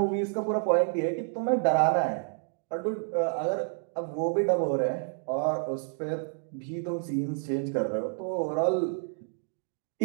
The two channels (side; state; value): left; silent; 58 dB below the other